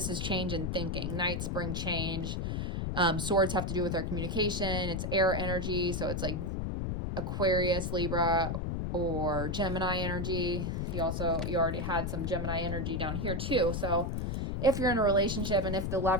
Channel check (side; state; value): left; noise; rumble, 1 dB below the sound